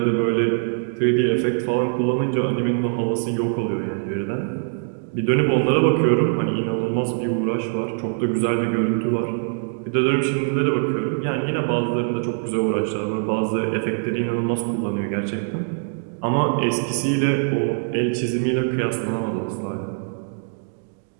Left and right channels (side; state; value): left; silent; digital silence